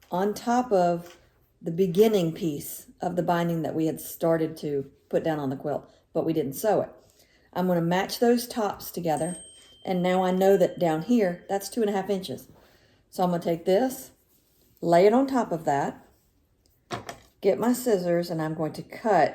on top of the beginning piece of the binding that we had started to put down on the quilt, but we didn't sew it. I'm going to match those tops together, and now I know that down here, that's 2.5 inches. So I'm going to take this, lay it on top of that, get my scissors, and I'm going to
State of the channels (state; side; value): identical; both; correlation 1.00